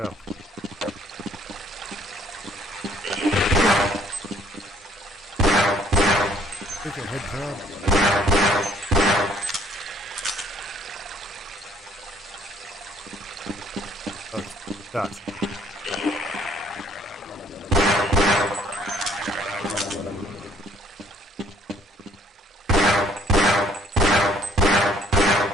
Take a head crab. Oh, dots.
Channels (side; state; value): both; normal; correlation 0.61